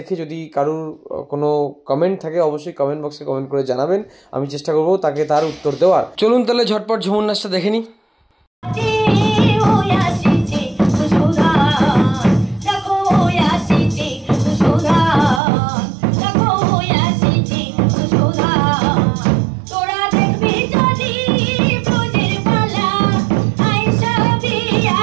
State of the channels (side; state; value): left; drops out; at 15.4 s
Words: যদি কারোর কোনো কমেন্ট থাকে অবশ্যই কমেন্ট বক্সে কমেন্ট করে জানাবেন, আমি চেষ্টা করবো তাকে তার উত্তর দেওয়ার। চলুন তাহলে ঝটপট ঝুমুর নাচটা দেখে নিই।